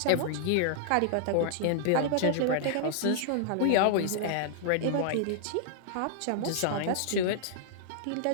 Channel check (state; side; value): different; both; correlation -0.01